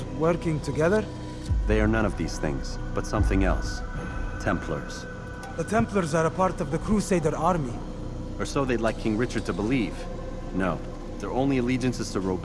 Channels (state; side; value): identical; both; correlation 1.00